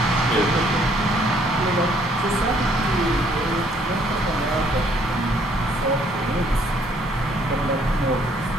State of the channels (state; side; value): normal; both; correlation 0.64